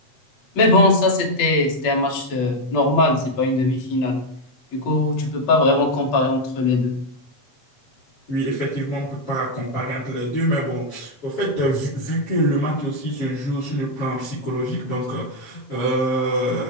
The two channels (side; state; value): right; late; 8.5 ms